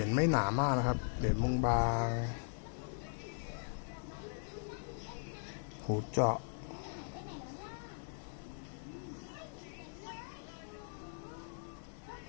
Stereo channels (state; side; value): silent; right; digital silence